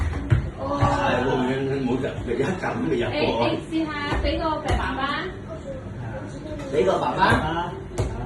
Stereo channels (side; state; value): both; identical; correlation 1.00